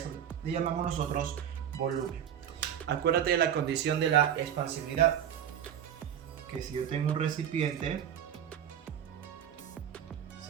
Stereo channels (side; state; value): left; quieter; 9.6 dB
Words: le llamamos nosotros volumen. Acuérdate de la condición de la expansibilidad, que si yo tengo un recipiente,